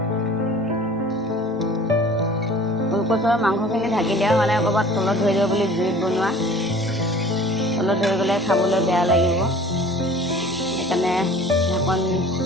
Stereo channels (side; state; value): both; normal; correlation 0.46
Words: কচুৰ মাংসখিনি ঢাকি দিয়া মানে ক'ৰবাত তলত ধৰি দিব বুলি জুইত বনোৱা, তলত ধৰি গ'লে খাবলৈ বেয়া লাগিব, সেইকাৰণে ঢাকন